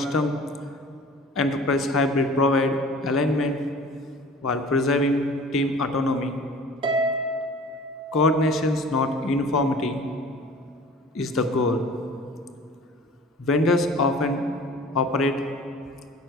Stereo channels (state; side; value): normal; both; correlation 0.44